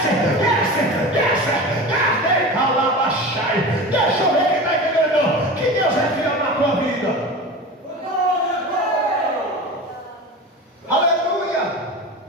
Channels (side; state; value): both; normal; correlation 0.31